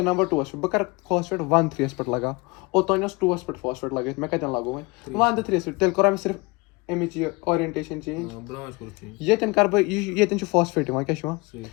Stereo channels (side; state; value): right; quieter; 26.0 dB